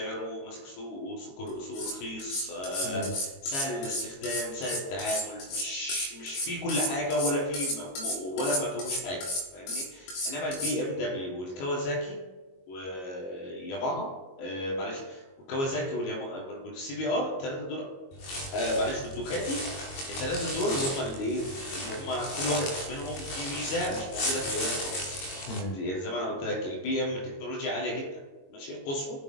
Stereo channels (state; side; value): late; right; 22 ms